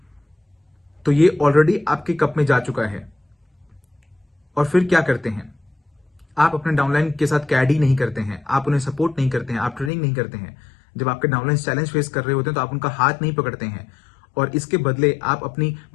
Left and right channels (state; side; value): drops out; right; at 9.9 s